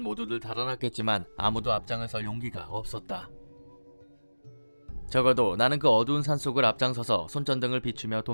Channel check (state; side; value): inverted; both; correlation -1.00